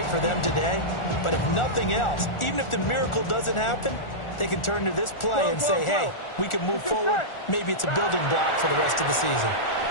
for them today. But if nothing else, even if the miracle doesn't happen, they can turn to this play and say, hey, we can move forward. Maybe it's a building block for the rest of the season.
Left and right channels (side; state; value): right; late; 1.4 ms